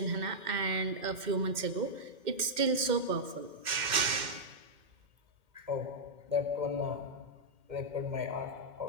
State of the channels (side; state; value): left; late; 2.1 ms